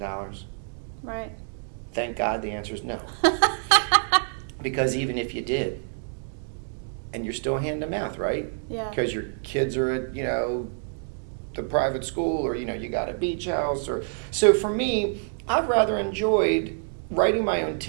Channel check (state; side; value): silent; left; digital silence